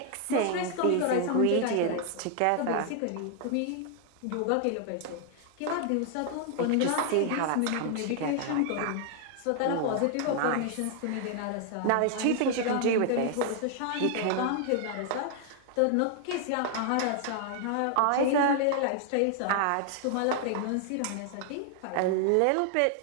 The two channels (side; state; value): both; different; correlation 0.00